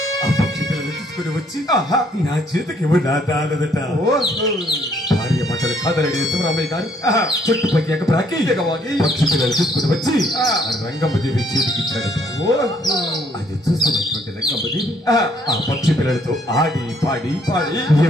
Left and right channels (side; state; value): both; normal; correlation 0.66